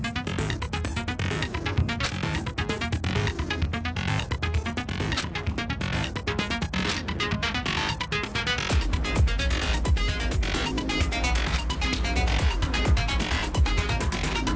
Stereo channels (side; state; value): both; identical; correlation 1.00